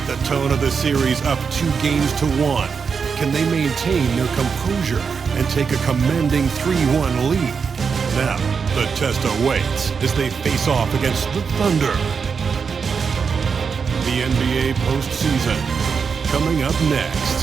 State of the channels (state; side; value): quieter; left; 5.8 dB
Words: the tone of the series up 2-1. Can they maintain their composure and take a commanding 3-1 lead? Now, the test awaits as they face off against the Thunder. The NBA postseason, coming up